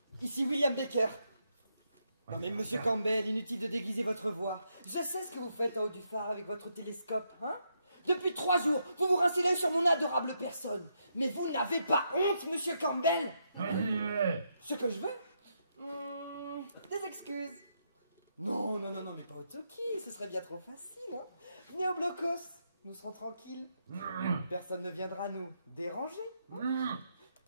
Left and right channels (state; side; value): inverted; both; correlation -0.80